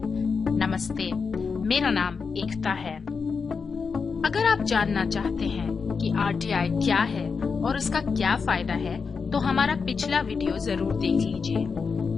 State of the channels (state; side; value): quieter; right; 5.3 dB